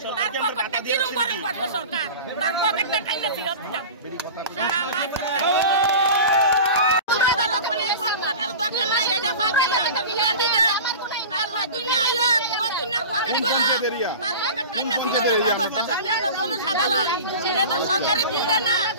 তার পকেটটা কিরম গরম করবে সরকার তার পকেটটা টাইনা ফিরত দাও সরকারি বিলটা না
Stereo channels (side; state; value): both; inverted; correlation -0.34